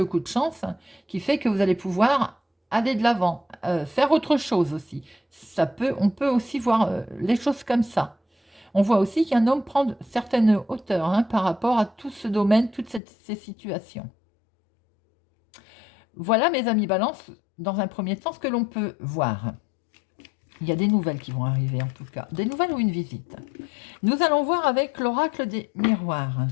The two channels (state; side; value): drops out; right; at 13.0 s